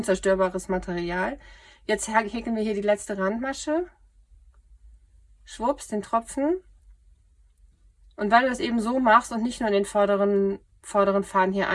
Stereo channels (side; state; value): both; identical; correlation 1.00